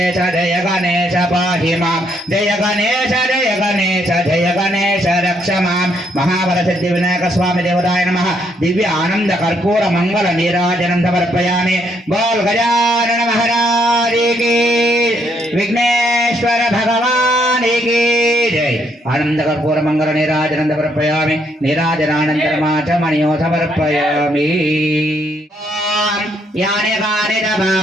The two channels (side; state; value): both; normal; correlation 0.72